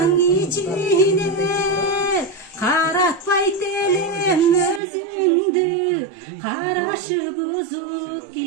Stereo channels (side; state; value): left; drops out; at 4.8 s